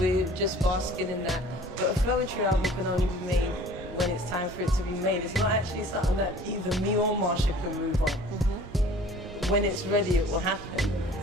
just basking in that. But a Floetry album can only be made when it's time for it to be made. It's not actually something that either me or Marsha can move on. When it's ready, it will happen.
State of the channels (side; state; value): both; normal; correlation 0.48